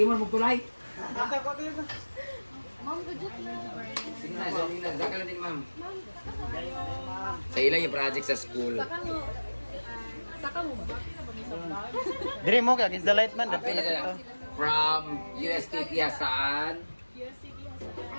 mo tulay? Ma'am, budget na. Sige na, sige na. Saka lang din, ma'am. Sa ilang yung project sa school. Saka mo ba? Dire mo kag is the light man Ate, from USTP saan?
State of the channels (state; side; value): inverted; both; correlation -1.00